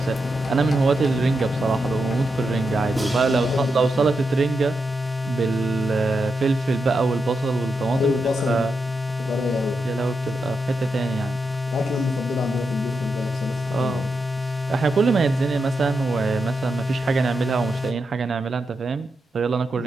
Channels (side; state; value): both; normal; correlation 0.86